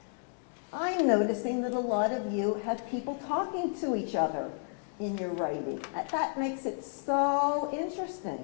I'm noticing that a lot of you have people talking to each other in your writing. That makes it so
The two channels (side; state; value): right; silent; 57 dB below the other